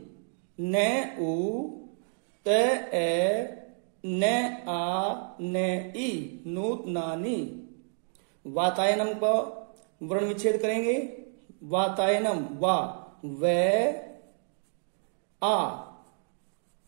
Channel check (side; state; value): left; silent; 58 dB below the other